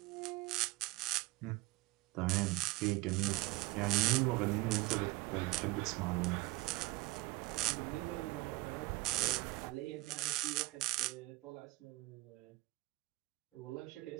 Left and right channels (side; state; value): left; quieter; 21.5 dB